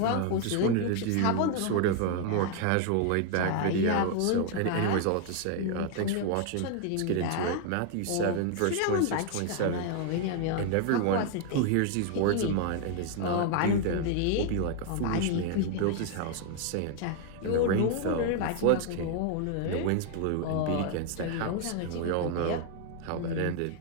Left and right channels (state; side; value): different; both; correlation 0.00